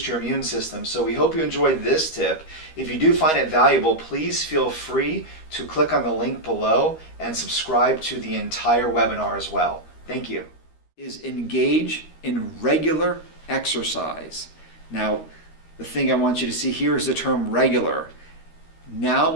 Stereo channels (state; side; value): late; right; 13 ms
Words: Your Immune System. So we hope you enjoyed this tip. If you do find it valuable, please feel free to click on the link below and subscribe to the entire webinar as well. Thank you. Is engage in regular exercise. Now, the thing I want you to see here is the term regular. Now